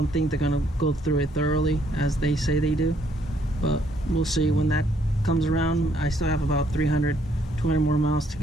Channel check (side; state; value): both; normal; correlation 0.69